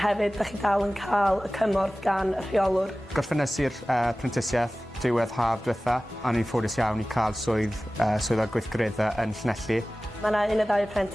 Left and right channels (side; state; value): both; normal; correlation 0.97